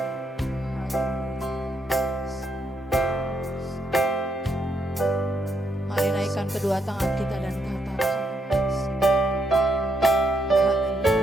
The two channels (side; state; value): both; normal; correlation 0.78